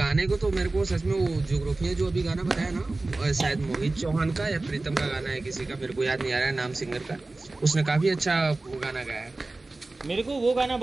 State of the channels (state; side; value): quieter; left; 3.2 dB